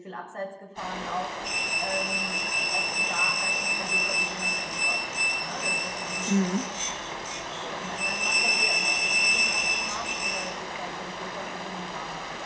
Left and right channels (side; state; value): both; identical; correlation 1.00